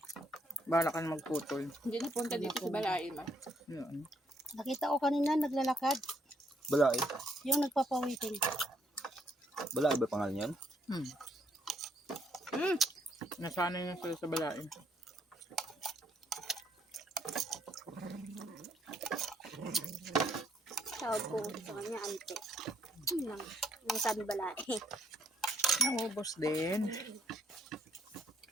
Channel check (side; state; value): both; normal; correlation 0.70